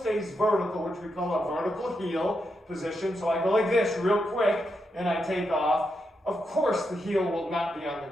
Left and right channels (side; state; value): both; normal; correlation 0.83